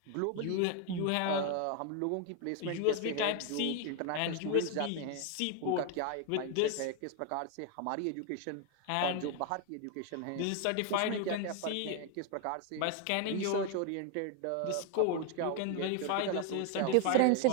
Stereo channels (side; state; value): both; different; correlation 0.00